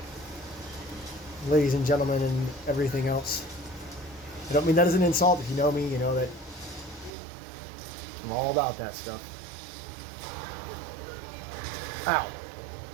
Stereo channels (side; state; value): left; drops out; at 7.1 s